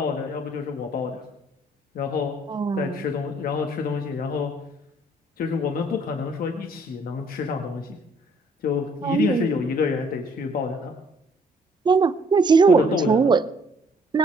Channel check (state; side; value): normal; both; correlation 0.63